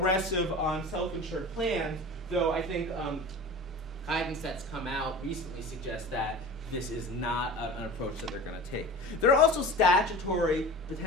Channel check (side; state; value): both; normal; correlation 0.35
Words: on self-insured plans, though I think guidance that's come out recently suggests that this is not an approach that they're going to take. There are also